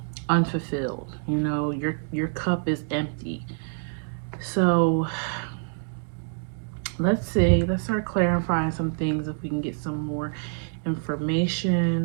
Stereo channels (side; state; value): left; silent; digital silence